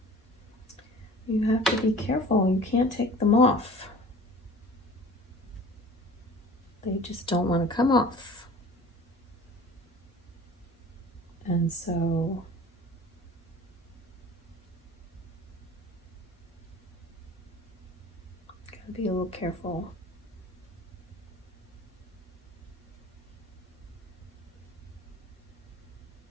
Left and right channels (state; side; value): normal; both; correlation 0.44